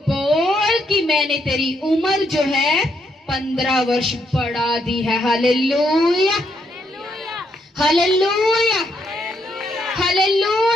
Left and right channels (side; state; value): both; normal; correlation 0.76